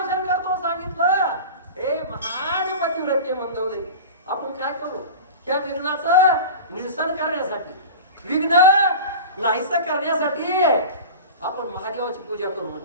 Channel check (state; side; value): inverted; both; correlation -0.32